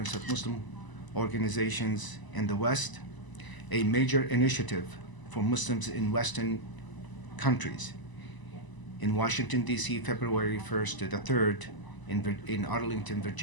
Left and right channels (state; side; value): late; right; 1.0 ms